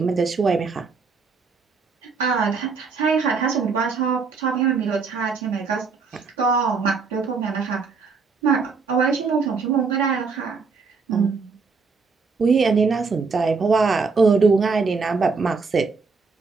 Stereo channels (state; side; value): quieter; left; 4.8 dB